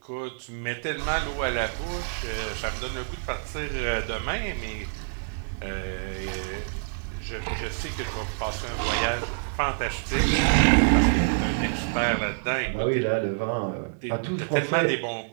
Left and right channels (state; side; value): silent; left; 58 dB below the other